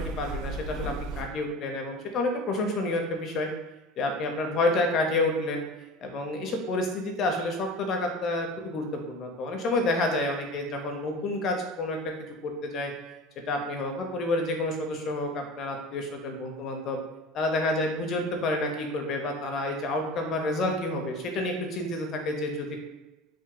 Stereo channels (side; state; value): both; normal; correlation 0.35